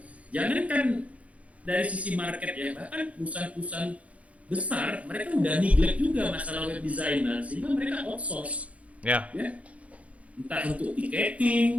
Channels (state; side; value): late; left; 0.065 ms